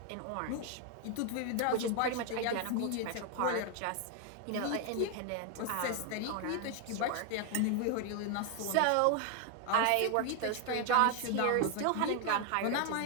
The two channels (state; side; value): different; both; correlation 0.00